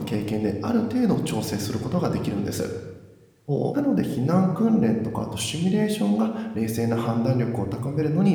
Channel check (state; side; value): identical; both; correlation 1.00